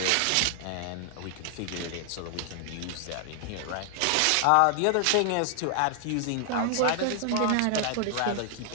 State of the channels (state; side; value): different; both; correlation 0.00